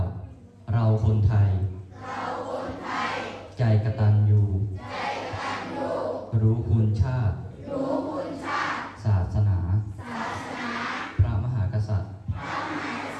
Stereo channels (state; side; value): identical; both; correlation 1.00